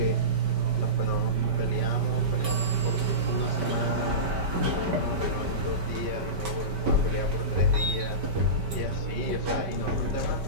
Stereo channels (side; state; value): left; late; 5.1 ms